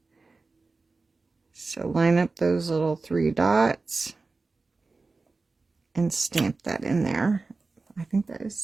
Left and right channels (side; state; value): left; quieter; 3.8 dB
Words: So line up those little 3 dots and stamp that in there. I think that is